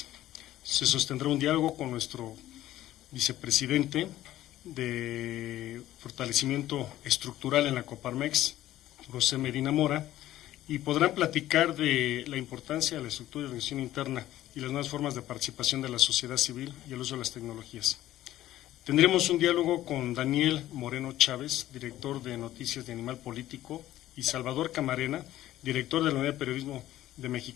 Se sostendrá un diálogo con nuestro vicepresidente de fortalecimiento estructural en la Coparmex, José Medina Mora, y podrán platicar de la importancia de la estructura y organización interna y las nuevas formas de participación de la sociedad civil y el uso de las tecnologías. Tendremos un diálogo con Daniel Moreno Chávez, director de Noticias de Animal Político, y Salvador Camarena, director de la Unidad de Periodismo de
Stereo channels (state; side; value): quieter; right; 14.1 dB